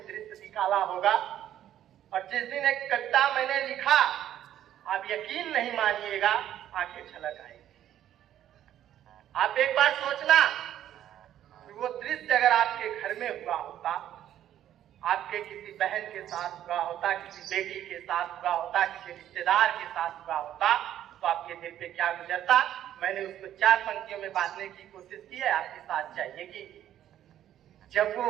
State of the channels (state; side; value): quieter; left; 11.5 dB